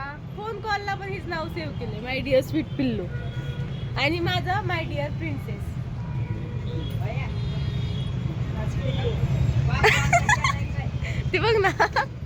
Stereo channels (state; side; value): identical; both; correlation 1.00